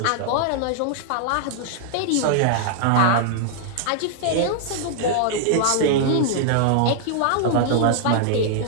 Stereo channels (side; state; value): both; different; correlation -0.01